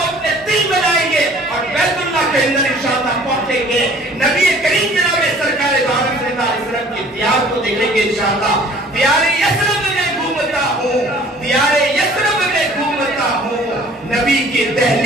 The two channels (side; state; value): both; normal; correlation 0.52